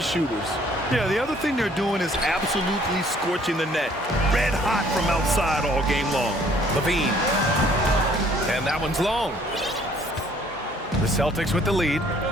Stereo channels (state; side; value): normal; both; correlation 0.60